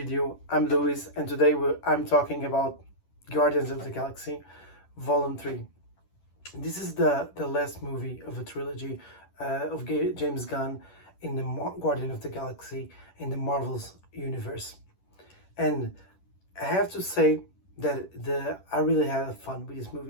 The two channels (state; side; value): late; right; 10 ms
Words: I'm Luis, and today I'm talking about Guardians of the Galaxy Volume 3. This is the last movie of a trilogy of James Gunn in the Guardian of the Galaxy in the Marvel's universe. And I have to say that I really had fun with this